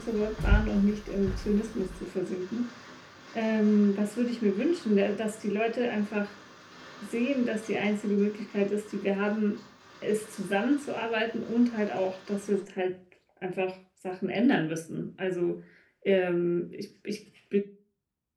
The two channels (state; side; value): identical; both; correlation 1.00